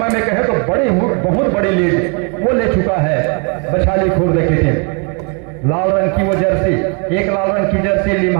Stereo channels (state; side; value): quieter; left; 35.4 dB